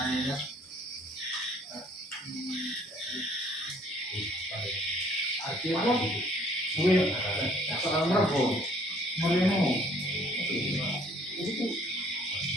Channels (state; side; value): normal; both; correlation 0.59